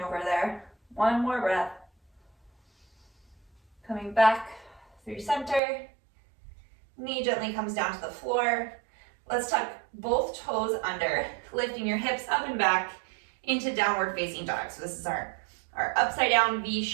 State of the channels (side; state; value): left; drops out; at 5.6 s